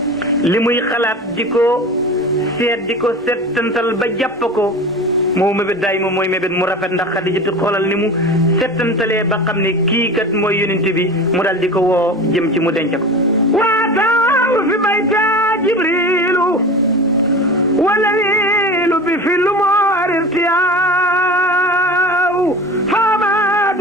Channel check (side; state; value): both; normal; correlation 0.32